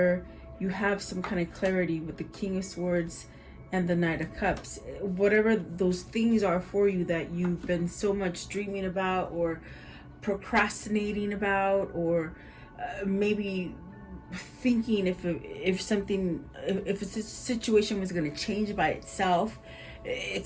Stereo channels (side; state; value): both; identical; correlation 1.00